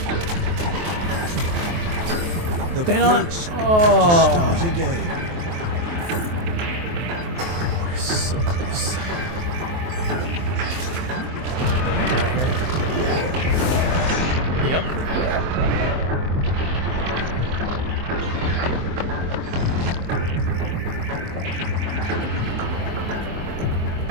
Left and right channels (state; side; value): late; left; 23 ms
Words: The Stand on. brakes Oh. start again. We're so close. Yep.